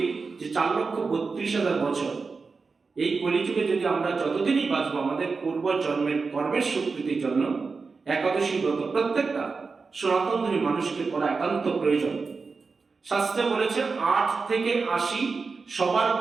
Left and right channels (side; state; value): left; quieter; 4.5 dB